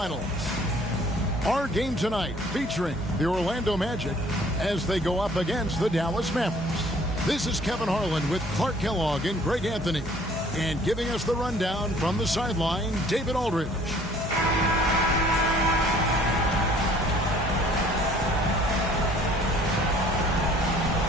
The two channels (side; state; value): both; normal; correlation 0.56